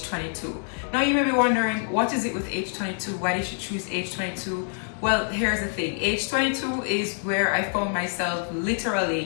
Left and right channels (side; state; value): right; silent; 56 dB below the other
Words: Now you may be wondering, what is it with age 22? Why did you choose age 22? Well, here's the thing. Age 22 is where I found myself